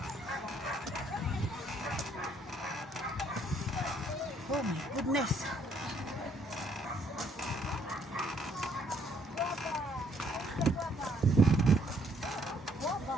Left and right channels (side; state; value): both; normal; correlation 0.67